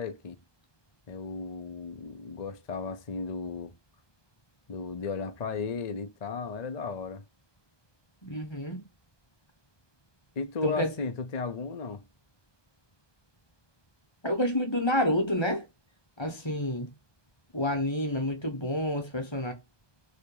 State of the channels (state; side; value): late; right; 1.3 ms